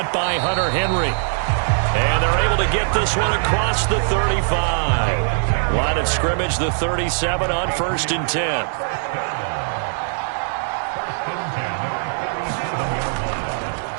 by Hunter Henry. And they're able to get this one across the 35. Line of scrimmage, the 37 on 1st and 10.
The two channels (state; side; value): silent; left; digital silence